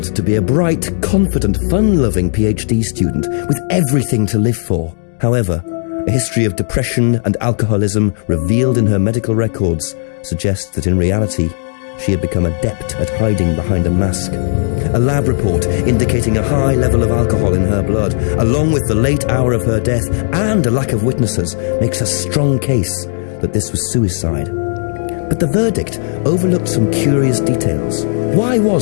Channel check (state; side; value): silent; right; digital silence